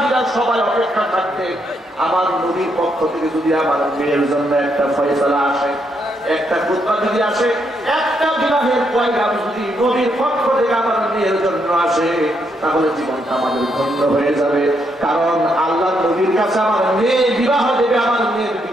সবাই অপেক্ষা থাকতে আমার নবীর পক্ষ থেকে যদি আমার মেয়ের জন্য একটা ফয়সালা আসে, একটা খুতবা যদি আসে, একটা বিবাহের পয়গাম যদি নবীর পক্ষ থেকে আমার মেয়ের জন্য আসে, তাহলে জীবনটা আমাদের ধন্য হয়ে যাবে। কারণ আল্লাহ নবীর কাছে আমার মেয়ে বিবাহ দেবে, আমার মেয়ের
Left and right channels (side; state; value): both; normal; correlation 0.77